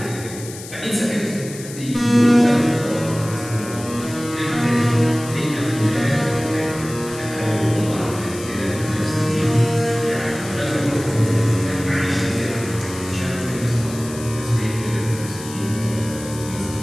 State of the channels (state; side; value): noise; left; hiss, 14 dB below the sound